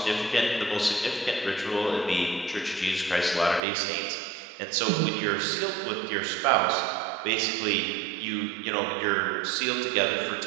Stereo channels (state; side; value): drops out; left; at 3.6 s